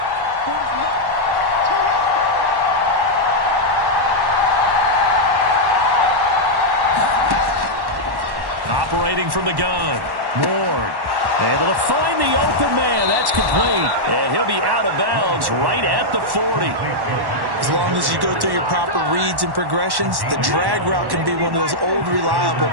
Operating from the gun, Ward. Able to find the open man. That's complete. And he'll be out of bounds right at the 40. As long as you go through your proper reads and progressions, the drag route can be one of those old reliable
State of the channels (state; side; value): late; left; 1.1 ms